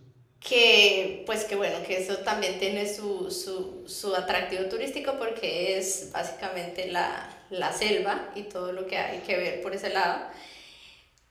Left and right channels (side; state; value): both; identical; correlation 1.00